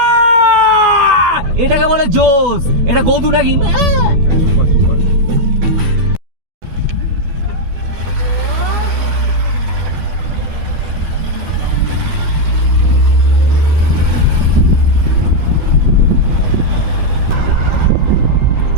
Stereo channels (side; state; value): left; late; 12 ms